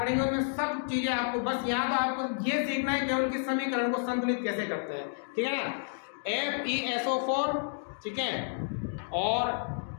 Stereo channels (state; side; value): silent; right; digital silence